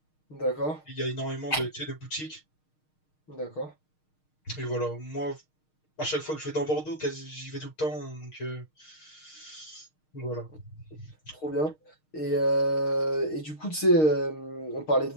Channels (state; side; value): late; right; 6.5 ms